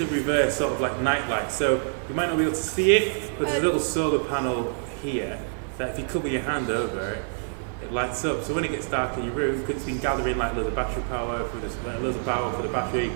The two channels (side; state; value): left; silent; digital silence